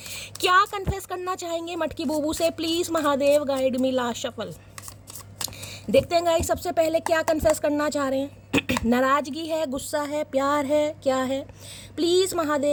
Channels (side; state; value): both; identical; correlation 1.00